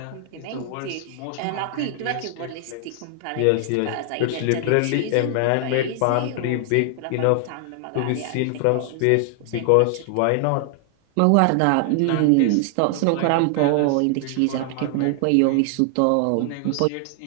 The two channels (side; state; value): both; different; correlation 0.00